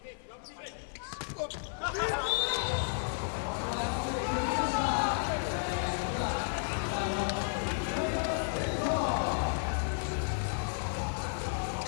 Chafier on serve. Spertoli scruffily but effectively takes second touch. Like any good setter, he can play that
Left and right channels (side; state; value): right; silent; 56 dB below the other